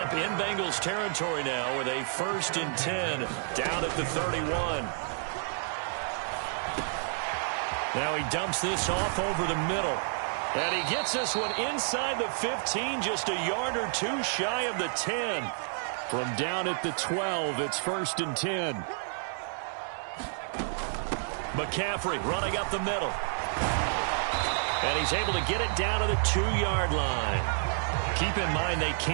in Bengals territory now with a 1st and 10 down at the 31. Now he dumps this off over the middle. And he gets this one inside the 15, just a yard or two shy of the 10. From down at the 12, it's 1st and 10. McCaffrey running up the middle. And he's able to get it down to the 2-yard line. Keep in mind they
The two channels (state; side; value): silent; left; 58 dB below the other